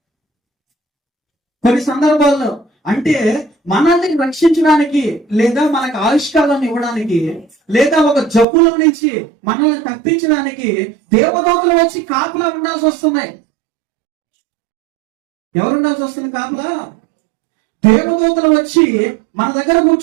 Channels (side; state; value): left; drops out; at 8.5 s